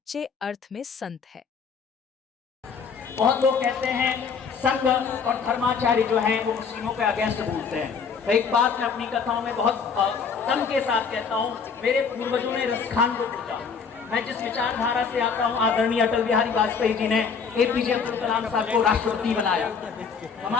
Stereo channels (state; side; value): quieter; right; 5.9 dB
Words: अर्थ में संत है। बहुत लोग कहते हैं संघ और धर्माचार्य जो हैं वो मुस्लिमों के अगेंस्ट बोलते हैं। तो एक बात मैं अपनी कथाओं में बहुत दम के साथ कहता हूँ, मेरे पूर्वजों ने रसखान को पूछा। मैं जिस विचारधारा से आता हूँ, आदरणीय अटल बिहारी वाजपेयी जी ने एपीजे अब्दुल कलाम साहब को राष्ट्रपति बनाया।